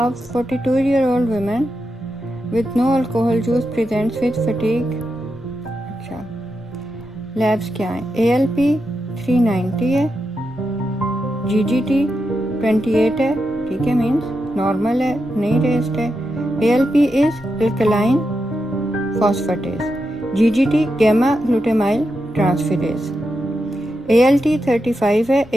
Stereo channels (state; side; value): normal; both; correlation 0.87